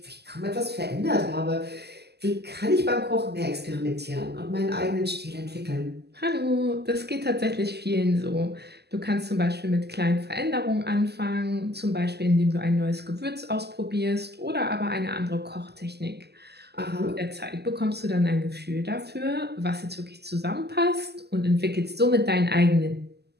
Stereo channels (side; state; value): left; late; 0.48 ms